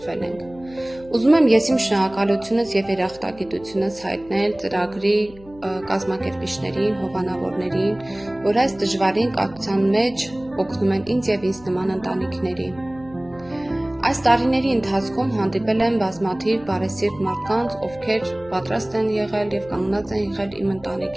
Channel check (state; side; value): noise; left; hum, 22 dB below the sound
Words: ենք։ Ուզում եմ ես իմ շնորհակալությունս եւ երախտագիտությունս հայտնել ծրագրի կազմակերպիչներին, հովանավորներին, որ այս դժվարին կապության մեջ օգնում են ինձ եւ ինձ նման ընտանիքների։ Այս տարիների ընթացքում հանդիպել եմ բազմաթիվ բարեսիրտ մարդկանց, ովքեր պատրաստ են եղել եւ կանգնած են եղել իմ